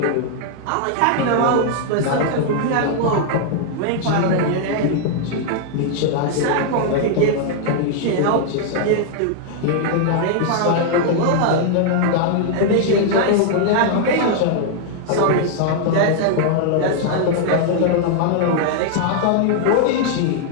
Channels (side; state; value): both; different; correlation 0.00